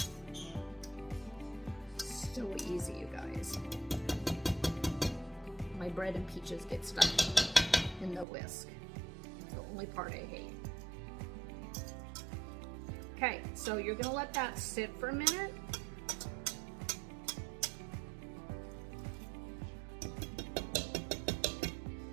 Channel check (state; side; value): drops out; left; at 8.2 s